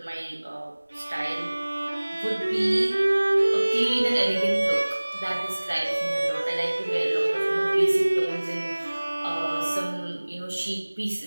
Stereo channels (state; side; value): inverted; both; correlation -1.00